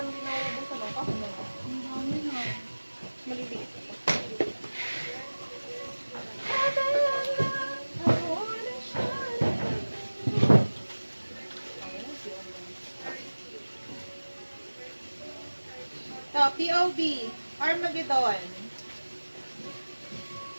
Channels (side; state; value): both; inverted; correlation -1.00